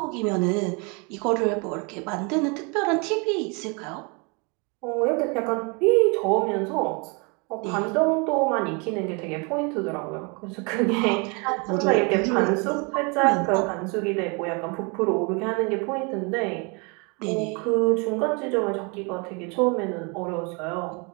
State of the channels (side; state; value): left; quieter; 31.8 dB